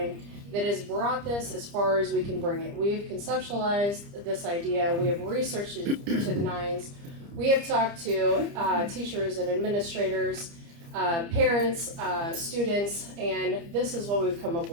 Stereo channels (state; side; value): late; left; 30 ms